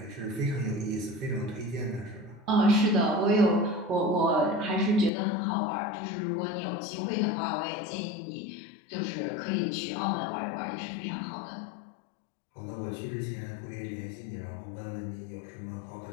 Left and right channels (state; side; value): drops out; right; at 5.1 s